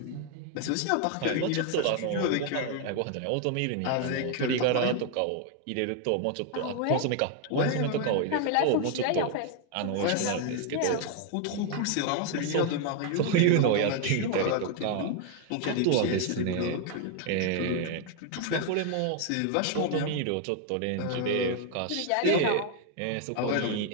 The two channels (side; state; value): both; different; correlation 0.01